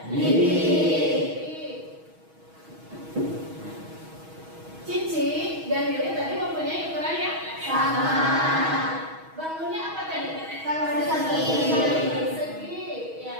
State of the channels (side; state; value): left; late; 6.3 ms